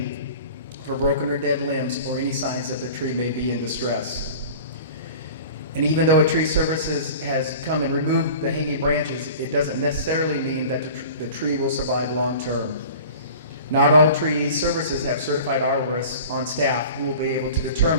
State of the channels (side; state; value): both; inverted; correlation -0.41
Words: for broken or dead limbs or any signs that the tree may be in distress. And even though a tree services has come and removed the hanging branches, it doesn't necessarily mean that the tree will survive long term. Not all tree services have certified arborists on staff who will be able to